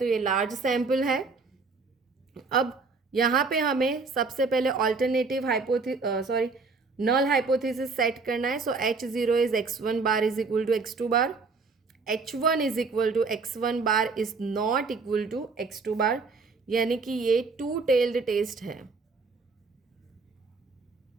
ये लार्ज सैम्पल है. अब यहाँ पे हमें सबसे पहले ऑल्टरनेटिव नल हाइपोथेसिस सेट करना है. So H0 is x1 bar is equal to x2 bar, H1 is equal to x1 bar is not equal to x2 bar, यानी कि ये टू टेल्ड टेस्ट है.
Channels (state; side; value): quieter; left; 4.3 dB